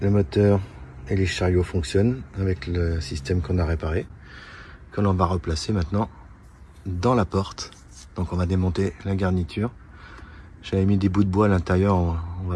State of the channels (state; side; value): identical; both; correlation 1.00